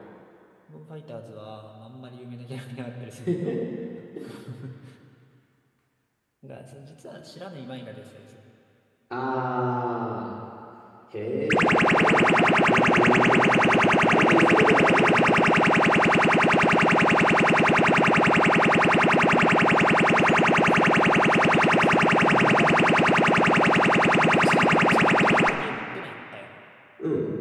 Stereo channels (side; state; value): both; identical; correlation 1.00